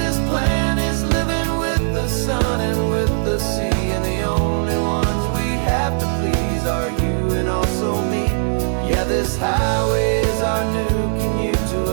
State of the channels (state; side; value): silent; left; 59 dB below the other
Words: plan is living with the sun and with the sea, and the only ones we have to please are you and also me. Yeah, this highway is our new commute to